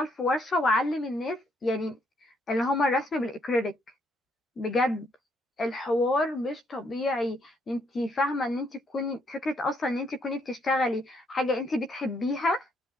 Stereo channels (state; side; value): normal; both; correlation 0.72